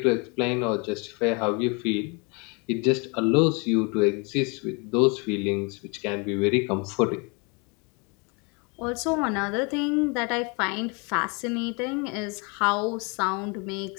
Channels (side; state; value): right; quieter; 31.5 dB